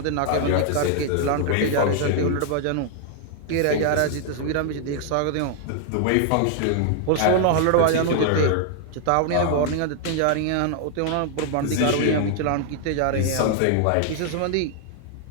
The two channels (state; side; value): different; both; correlation 0.00